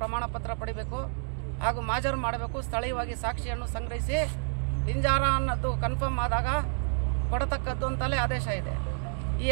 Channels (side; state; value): left; silent; digital silence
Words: ಪತ್ರ ಪಡಿಬೇಕು ಹಾಗೂ ಮಾಜರು ಮಾಡಬೇಕು, ಸ್ಥಳೀಯವಾಗಿ ಸಾಕ್ಷಿಯನ್ನು ಸಂಗ್ರಹಿಸಿ ಹಿಂಜಾರ ಅನ್ನೋದು ಕನ್ಫರ್ಮ್ ಆದಾಗ ಕೊಡತಕ್ಕದ್ದು ಅಂತಲೇ ಆದೇಶ ಇದೆ. ಈ